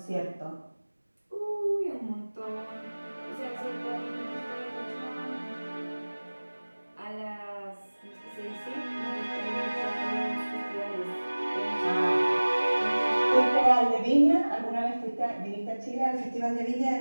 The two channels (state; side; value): inverted; both; correlation -1.00